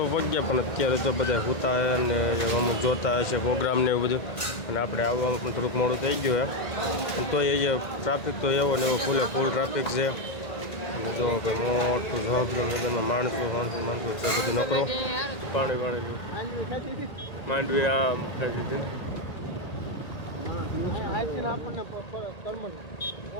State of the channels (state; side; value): late; right; 1.9 ms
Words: પગ્યા પણ અત્યારે તો બધા સૂતા અને અમુક જોતા હશે પ્રોગ્રામ ને એવું બધું, અને આપણે આવવામાં પણ થોડુંક મોડું થઈ ગયું પણ તો એ ટ્રાફિક તો એવો ને એવો ફૂલ ટ્રાફિક છે. અને જો ભાઈ મોટું જવાબદાર માણસો છે બધું નકરો પાણી માંડવી આમ ખાઈ દીધી ને.